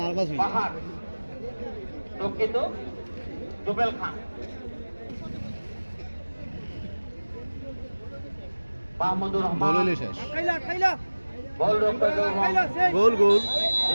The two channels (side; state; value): both; inverted; correlation -1.00